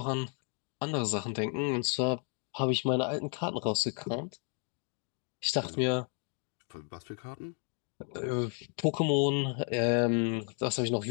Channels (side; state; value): right; quieter; 39.4 dB